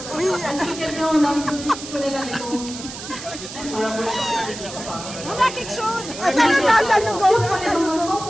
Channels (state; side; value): noise; right; hiss, 11 dB below the sound